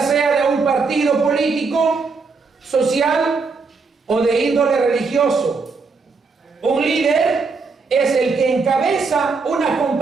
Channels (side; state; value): left; quieter; 4.5 dB